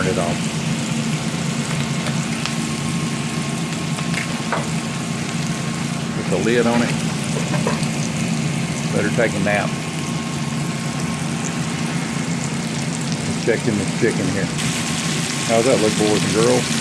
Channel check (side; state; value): both; identical; correlation 1.00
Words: it off. Put the lid on it. Better take a nap. Let's check in this chicken here. How's that look, boys and girls?